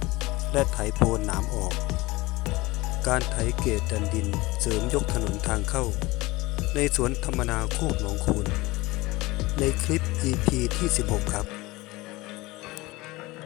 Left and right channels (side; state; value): right; quieter; 20.9 dB